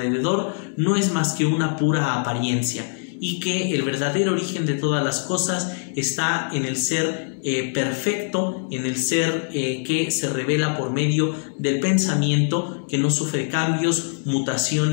no es más que una pura apariencia, y que el verdadero origen de todas las cosas está en el ser perfecto, en el ser que se revela por medio del pensamiento, que no sufre cambios,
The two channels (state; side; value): silent; right; 64 dB below the other